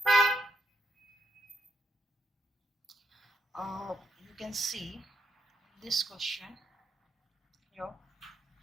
You can see this question here.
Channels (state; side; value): normal; both; correlation 0.78